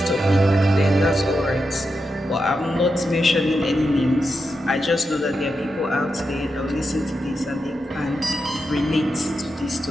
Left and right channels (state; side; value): normal; both; correlation 0.87